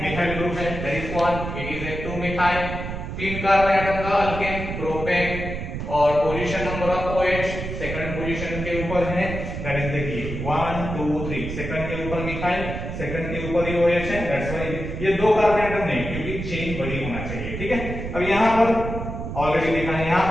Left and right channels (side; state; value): right; noise; rumble, 6 dB below the sound